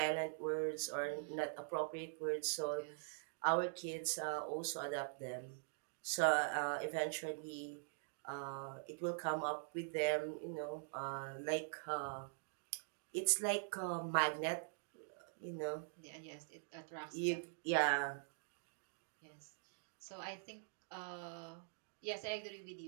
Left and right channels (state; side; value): silent; left; digital silence